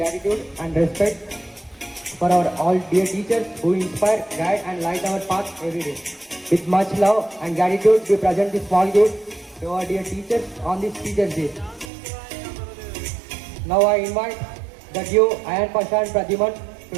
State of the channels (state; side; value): drops out; left; at 11.9 s